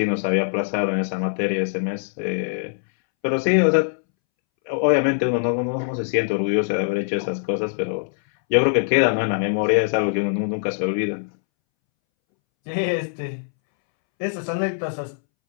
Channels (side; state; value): right; silent; 64 dB below the other